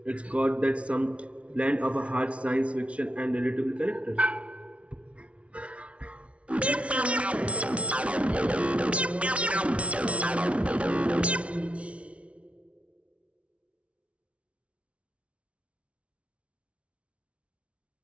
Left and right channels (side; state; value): left; late; 0.062 ms